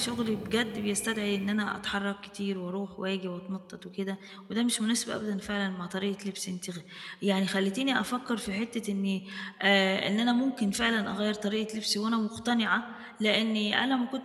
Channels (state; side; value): identical; both; correlation 1.00